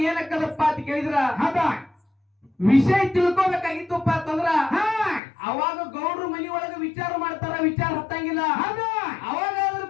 ಏನಕ್ಕದಪ್ಪ ಅಂತ ಕೇಳಿದ್ರ ಹೌದಾ ವಿಷಯ ತಿಳ್ಕೊಬೇಕಾಗಿತ್ತಪ್ಪ ಅಂತಂದ್ರ ಅವಾಗ ಗೌಡ್ರು ಮನಿ ಒಳಗ ವಿಚಾರ ಮಾಡ್ತಾರ. ವಿಚಾರ ಹತ್ತಂಗಿಲ್ಲ. ಅವಾಗಾದ್ರೂ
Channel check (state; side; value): drops out; right; at 5.2 s